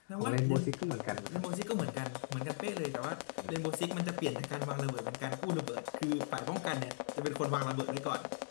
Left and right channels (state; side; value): silent; right; 52 dB below the other